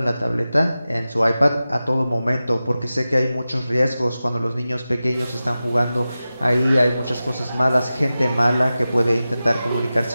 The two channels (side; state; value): both; inverted; correlation -0.95